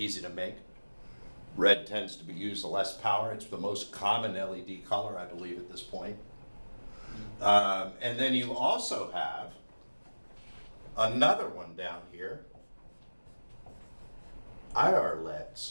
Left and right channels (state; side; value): inverted; both; correlation -1.00